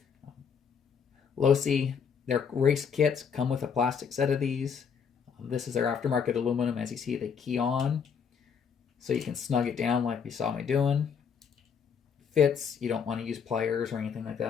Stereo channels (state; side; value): quieter; right; 6.7 dB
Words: Losi, their race kits come with a plastic set of these. This is their aftermarket aluminum. As you see, they key on, so you can snug it down like you saw me doing. Fits, you don't want to use pliers or anything like